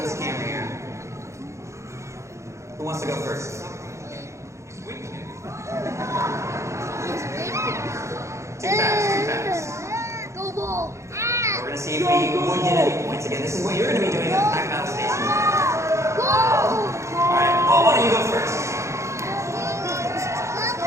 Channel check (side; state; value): left; late; 0.14 ms